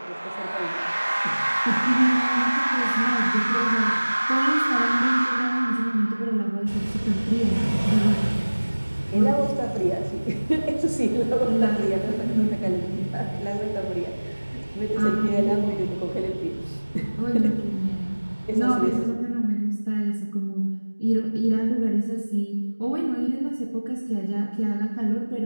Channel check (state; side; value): inverted; both; correlation -1.00